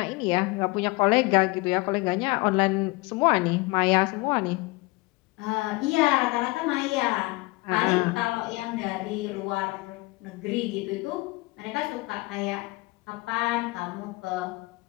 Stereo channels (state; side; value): quieter; right; 23.6 dB